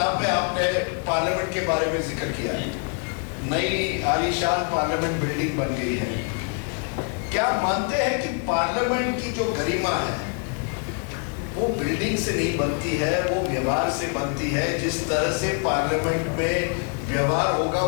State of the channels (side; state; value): right; quieter; 37.8 dB